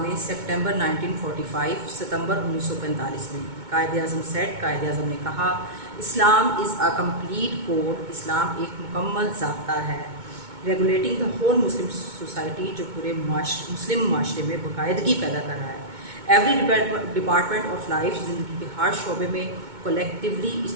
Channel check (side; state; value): left; late; 2.2 ms